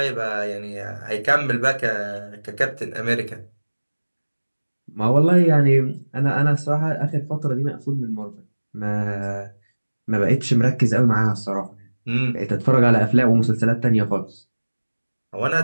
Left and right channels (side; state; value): both; inverted; correlation -1.00